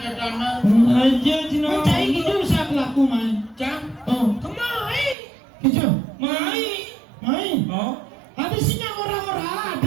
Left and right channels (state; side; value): drops out; left; at 5.2 s